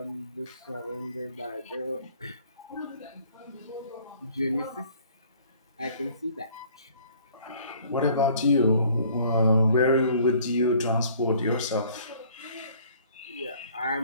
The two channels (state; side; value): inverted; both; correlation -0.56